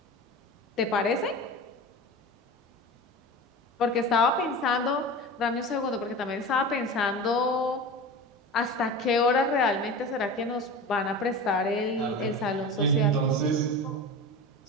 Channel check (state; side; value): normal; both; correlation 0.31